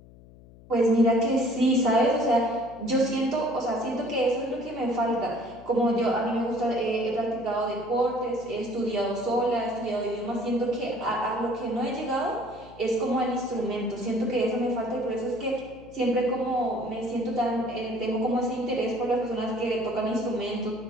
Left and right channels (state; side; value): noise; left; hum, 22 dB below the sound